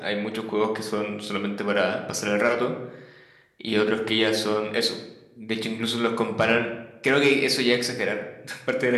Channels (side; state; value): both; identical; correlation 1.00